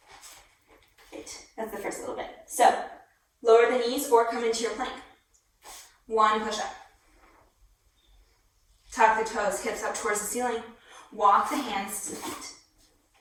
Great, that's the first little bit. So, lower the knees or come into your plank. One push-up. Tuck the toes, hips up towards the ceiling. Walk the hands to the feet.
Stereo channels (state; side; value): identical; both; correlation 1.00